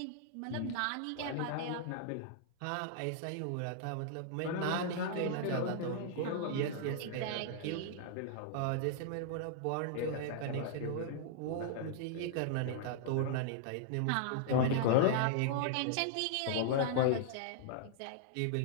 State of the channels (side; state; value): both; different; correlation -0.01